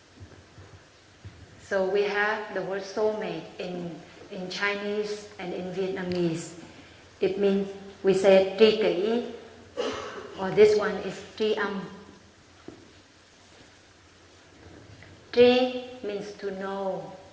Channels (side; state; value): both; identical; correlation 1.00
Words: So we have the word soulmate in Chinese and in Vietnamese. It means, we say tri kỷ, or this one is tri âm. Tri means to know,